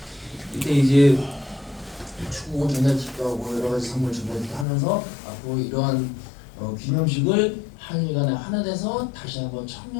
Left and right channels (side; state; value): right; drops out; at 4.7 s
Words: 이때 이제 축구 전달식도 하고 여러 가지 선물 전달식도 하면서 앞으로 이러한 기념식을 한일간에 하나 돼서 다시 한번